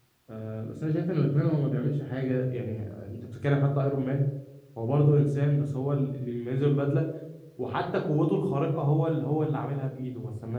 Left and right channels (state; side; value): identical; both; correlation 1.00